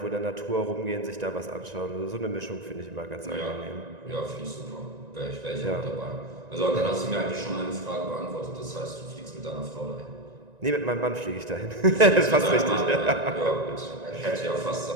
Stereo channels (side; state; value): left; late; 1.9 ms